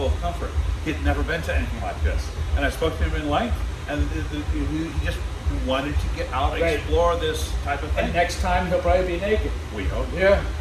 of comfort. He'd never been to anything like this. And I spoke to him in length, and he just who wanted to get out and Right. explore this type of thing. And next time he'll probably be naked. We hope. Yeah.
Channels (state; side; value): identical; both; correlation 1.00